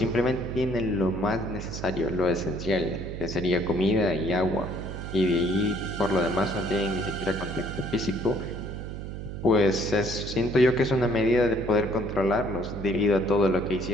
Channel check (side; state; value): right; noise; hum, 8 dB below the sound